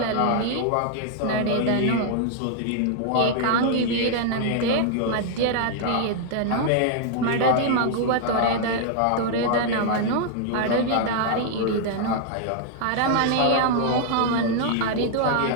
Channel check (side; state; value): both; different; correlation 0.00